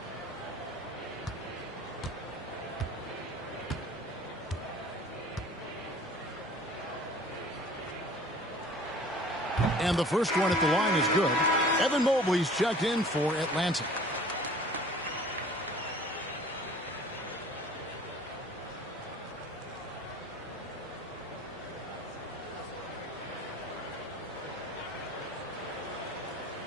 And the first one at the line is good. Evan Mobley's checked in for Atlanta.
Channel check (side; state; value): both; normal; correlation 0.48